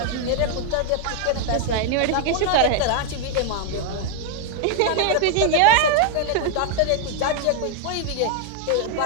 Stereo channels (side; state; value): both; different; correlation 0.00